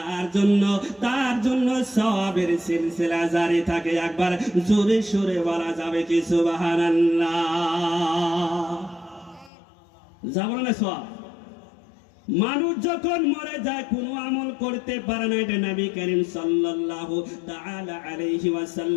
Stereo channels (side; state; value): right; drops out; at 9.5 s